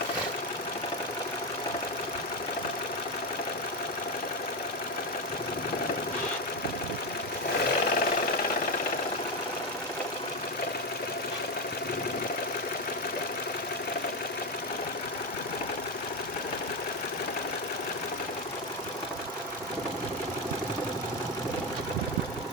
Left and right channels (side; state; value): both; normal; correlation 0.12